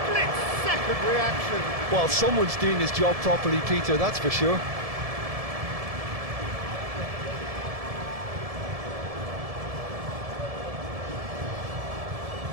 reaction. Well, someone's doing his job properly, Peter, that's for sure.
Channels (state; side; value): late; left; 1.7 ms